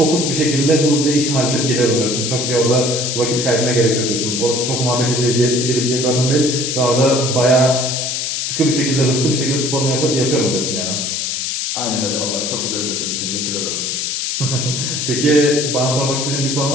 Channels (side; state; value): left; noise; hiss, 2 dB below the sound